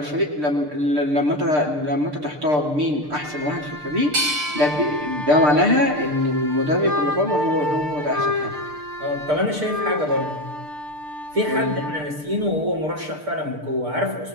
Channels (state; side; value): late; left; 6.7 ms